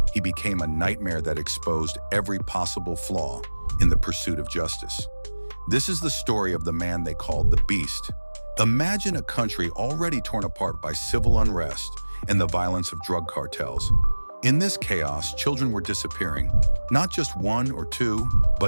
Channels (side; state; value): both; inverted; correlation -1.00